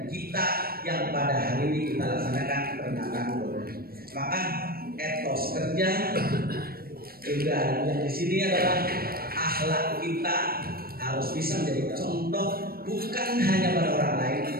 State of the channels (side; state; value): left; late; 0.44 ms